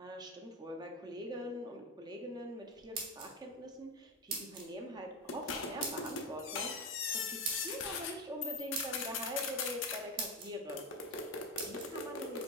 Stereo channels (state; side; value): normal; both; correlation 0.16